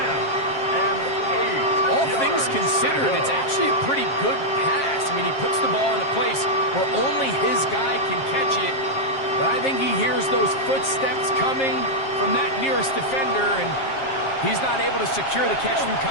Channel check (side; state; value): right; late; 7.5 ms